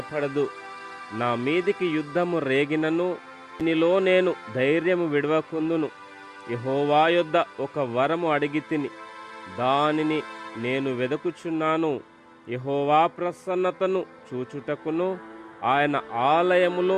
నా మీదికి యుద్ధము రేగినను దీనిలో నేను ధైర్యము విడవకుందును. యెహోవా యొద్ద ఒక వరము అడిగితిని, దానిని నేను వెదకుచున్నాను. యెహోవా ప్రసన్నతను చూచుటకును ఆయన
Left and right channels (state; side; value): identical; both; correlation 1.00